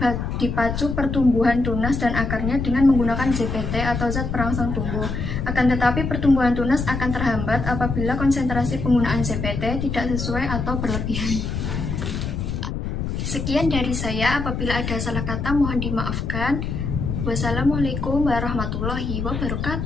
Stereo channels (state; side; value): noise; left; rumble, 3 dB below the sound